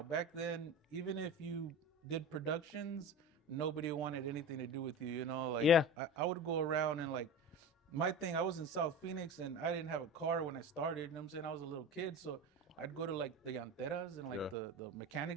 Back then, even if you did productions, nobody wanted anything to do with you. You know, like Yeah. I would go around and like. My thing, I was in South Phoenix and I didn't have a car when I started. You know what I'm saying? I was a little kid, so I'd go to like the llanteras and like the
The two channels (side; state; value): both; normal; correlation 0.30